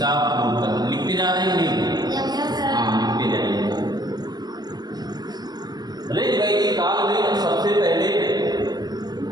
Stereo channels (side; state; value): left; late; 0.19 ms